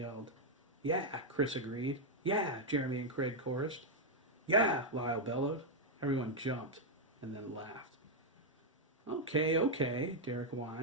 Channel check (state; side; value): normal; both; correlation -0.01